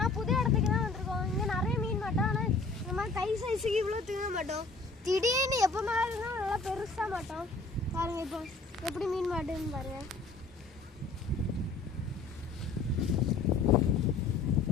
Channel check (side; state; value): right; quieter; 3.8 dB